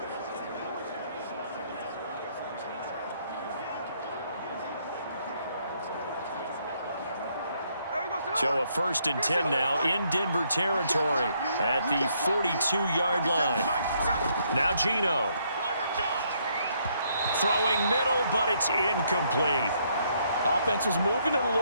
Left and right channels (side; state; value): both; inverted; correlation -0.71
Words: So a 1st and 10 now in Denver territory at the 42-yard line. Now Geno. Throwing middle, but it's incomplete. Offense was moving it a